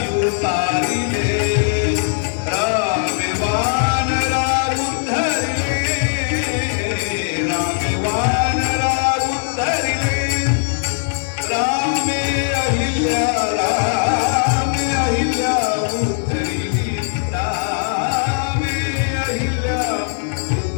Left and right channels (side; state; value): right; silent; digital silence